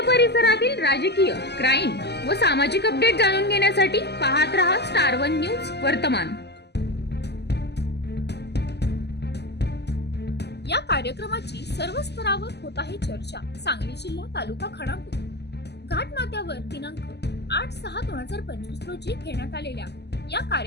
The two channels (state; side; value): late; right; 0.49 ms